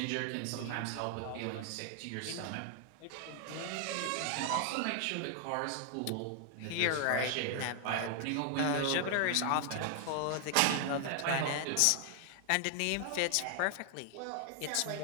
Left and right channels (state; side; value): different; both; correlation 0.00